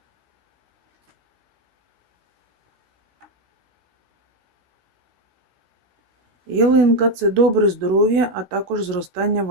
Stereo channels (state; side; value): late; left; 16 ms